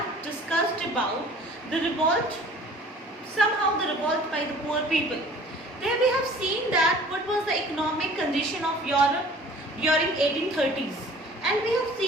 discussed about the revolt, somehow the revolt by the poor people. There we have seen that what was the economic condition of Europe during 1830s, and we have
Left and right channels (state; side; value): normal; both; correlation 0.49